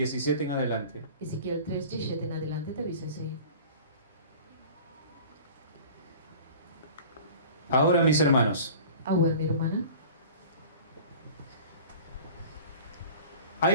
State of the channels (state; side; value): inverted; both; correlation -0.42